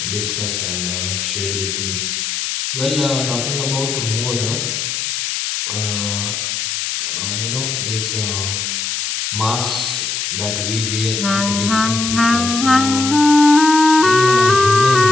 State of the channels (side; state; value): left; noise; hiss, 3 dB below the sound